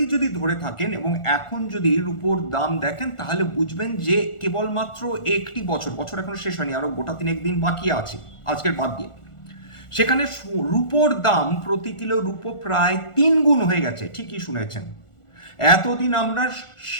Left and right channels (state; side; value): late; right; 1.4 ms